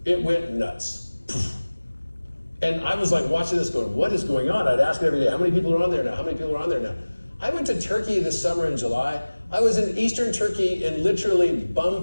It went nuts. And I was like watching this going, what is going on? I'd ask it every day, how many people are on there now? How many people are on there now? I went to Turkey this summer in July. I was in Eastern Turkey in literally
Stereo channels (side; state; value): both; inverted; correlation -1.00